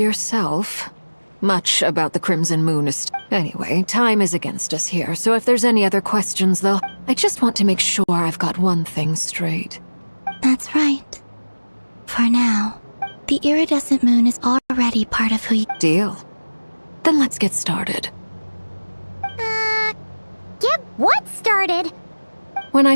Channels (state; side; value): inverted; both; correlation -1.00